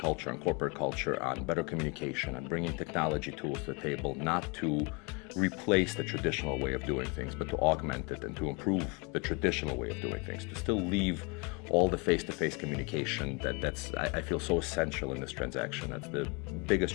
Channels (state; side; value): quieter; right; 30.8 dB